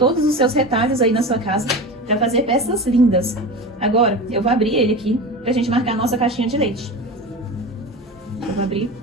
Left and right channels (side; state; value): both; normal; correlation 0.28